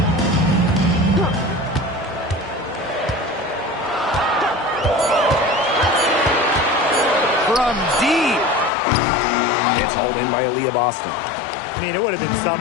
From deep. It's hauled in by Aaliyah Boston. I mean, it would have been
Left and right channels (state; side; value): drops out; right; at 8.7 s